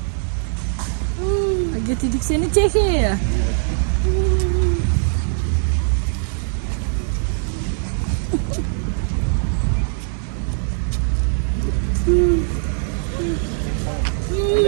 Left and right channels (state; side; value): silent; left; 65 dB below the other